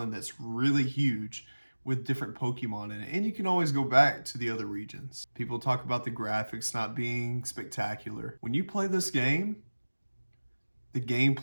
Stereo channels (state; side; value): inverted; both; correlation -1.00